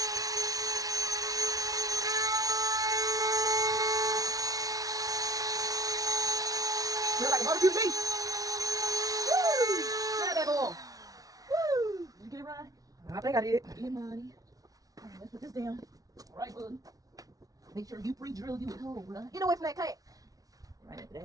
Feel like a barbecue beef. Woo! Grab that ball. Woo! Did you get it right? I think I did. Yeah, money. Alright, let's put this down. Alright, bud. Make sure you pre-drill you a hole, right? You know what's that cat? Right after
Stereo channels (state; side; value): late; left; 0.18 ms